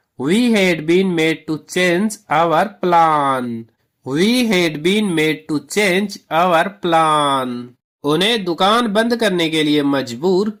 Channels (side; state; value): both; identical; correlation 1.00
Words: We had been made to change our plan. We had been made to change our plan. उन्हें दुकान बंद करने के लिए मजबूर